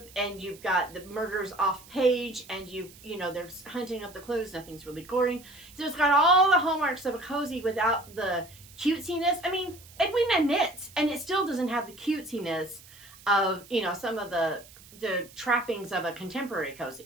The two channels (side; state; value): right; noise; hiss, 21 dB below the sound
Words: and you've got the murders off page, and they're hunting up the clues. Nothing's really gory. So it's got all the hallmarks of a cozy without the cutesiness. I mean, Edwina knits, and it still doesn't have the cutesiness of, some of the trappings of a contemporary